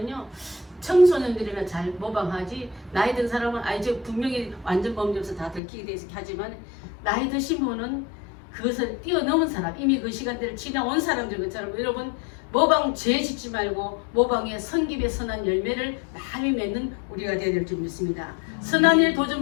청소년들이나 잘 모방하지 나이 든 사람은 이제 분명히 완전 범죄에서 다 들키게 돼 있게 하지만 나이 드신 분은 그것을 뛰어넘은 사람 이미 그 시간대를 지나온 사람들 것처럼 여러분 모방죄 짓지 말고 모방의 성김의 선한 열매를 많이 맺는 우리가 되어야 될 줄 믿습니다. 선한 일 도전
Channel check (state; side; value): drops out; right; at 5.6 s